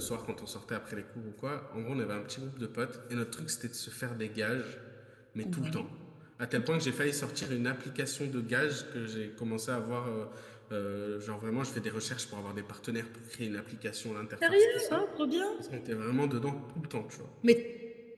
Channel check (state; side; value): identical; both; correlation 1.00